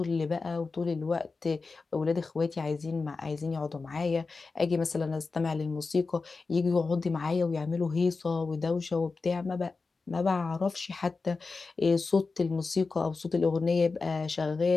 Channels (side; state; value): right; quieter; 4.2 dB